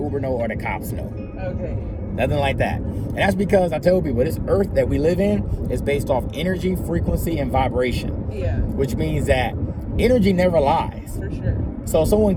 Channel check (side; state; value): both; identical; correlation 1.00